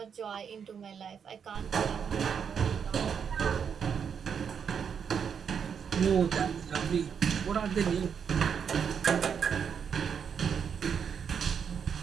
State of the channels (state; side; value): quieter; left; 7.2 dB